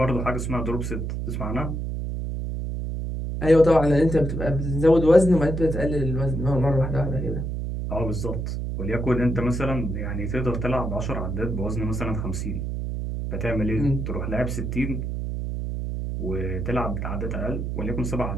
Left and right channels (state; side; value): noise; right; hum, 3 dB below the sound